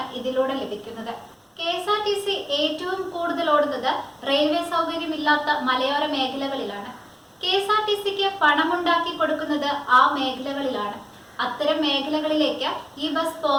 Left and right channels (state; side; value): identical; both; correlation 1.00